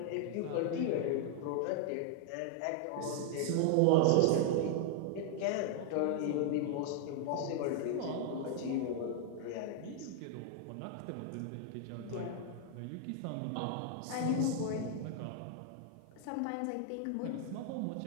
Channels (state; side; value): different; both; correlation 0.00